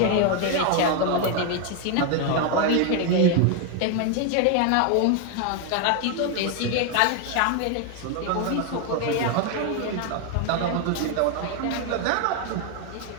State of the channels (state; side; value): different; both; correlation 0.01